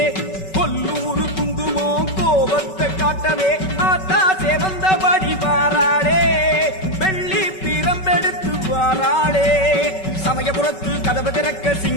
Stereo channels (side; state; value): right; late; 5.3 ms